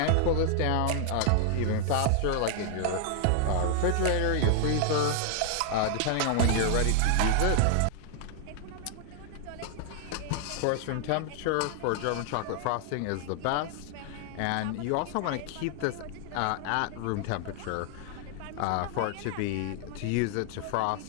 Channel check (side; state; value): both; different; correlation 0.00